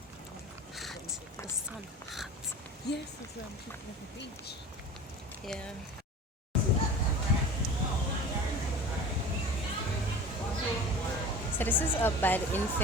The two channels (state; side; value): normal; both; correlation 0.38